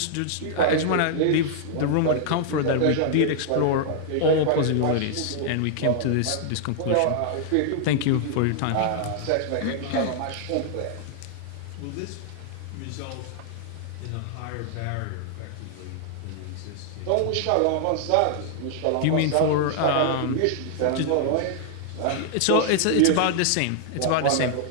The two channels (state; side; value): different; both; correlation -0.01